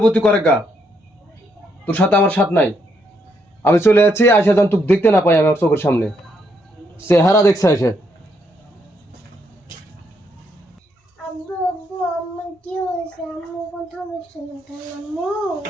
তুই করে গা। তোর সাথে আমার সাথ নাই। আমি চলে যাচ্ছি, আসে যখন তুই দেখতে না পাই আমার চোখের সামনে, চেহারা দেখছে এসে। আব্বু আব্বু আমার কি হয়েছে? আম্মু কথা বলছে না কেন? আম্মু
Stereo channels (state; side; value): normal; both; correlation 0.75